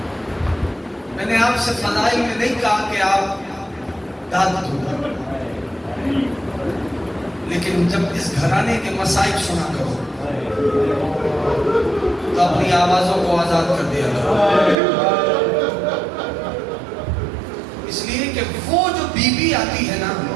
میں نے آپ سے فضائل میں نہیں کہا کہ آپ داد دو، لیکن جب اس گھرانے کے مصائب سنا کرو تو اپنی آوازوں کو آزاد کر دیا کرو. اس لیے کہ وہ جو بی بی آتی ہے نا،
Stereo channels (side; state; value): left; drops out; at 14.8 s